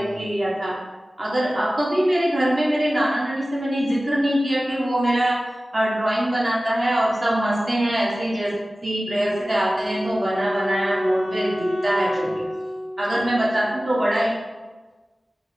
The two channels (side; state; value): both; normal; correlation 0.96